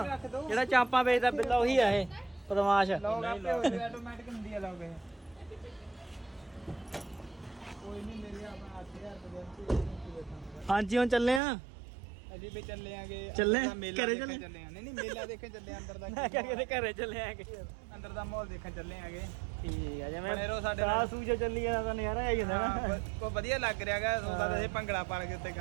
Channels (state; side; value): drops out; left; at 11.4 s